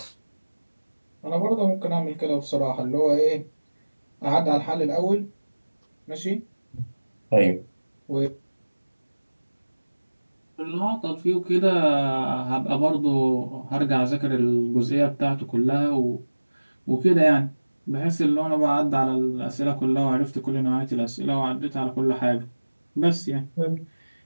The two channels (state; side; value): inverted; both; correlation -1.00